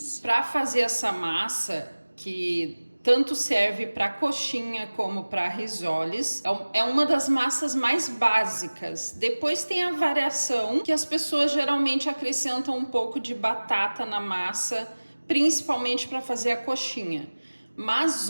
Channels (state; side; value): inverted; both; correlation -1.00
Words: Para fazer essa massa, que tanto serve para coxinha como para risoles, é uma das massas mais básicas. Depois tem a variação, que as pessoas geralmente acrescentam um pouco de batata na massa, principalmente para fazer a coxinha. Mas